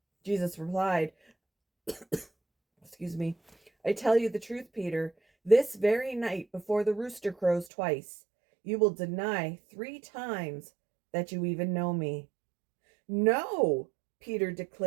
Jesus replied, "I tell you the truth, Peter, this very night before the rooster crows twice, you will deny 3 times that you even know me." "No," Peter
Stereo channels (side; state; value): left; drops out; at 7.7 s